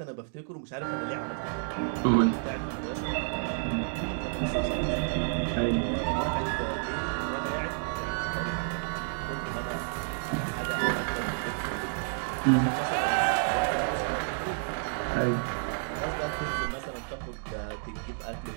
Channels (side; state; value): left; silent; 58 dB below the other